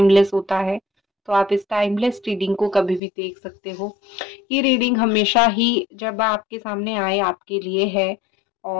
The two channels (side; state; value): right; drops out; at 3.0 s